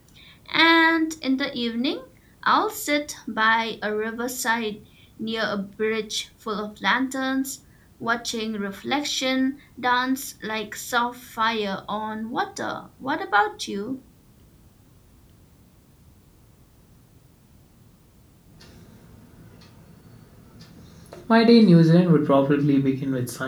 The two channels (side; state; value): both; identical; correlation 1.00